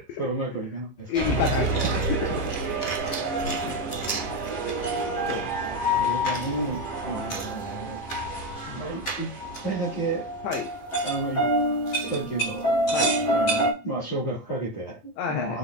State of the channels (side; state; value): right; late; 15 ms